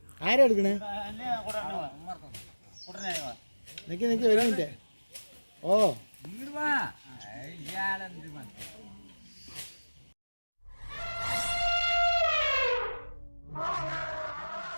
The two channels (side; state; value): both; inverted; correlation -1.00